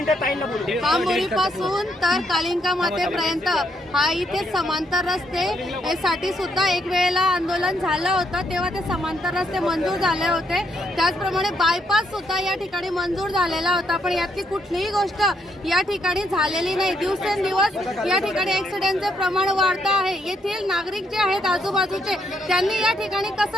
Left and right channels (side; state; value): both; normal; correlation 0.75